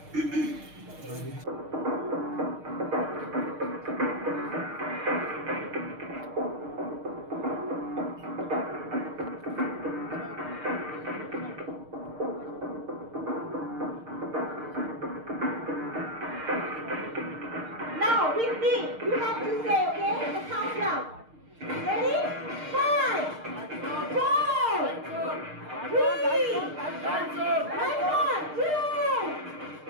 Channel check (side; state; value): left; late; 6.6 ms